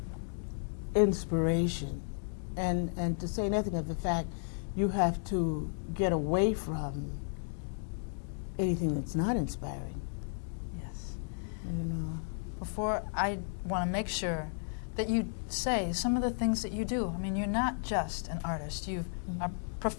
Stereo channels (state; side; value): silent; right; digital silence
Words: inspiration. And to say nothing of the fact, you have to get away from anything that's not inspiring, Yes. you know. Before, I want to make sure that you say some of the things that you do. I mean, you're not just an artist. You're a